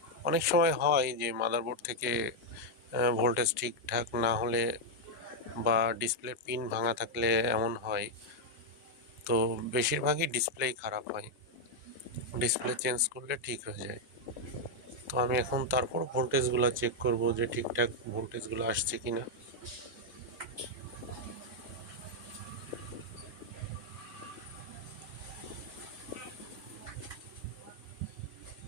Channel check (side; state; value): both; normal; correlation 0.00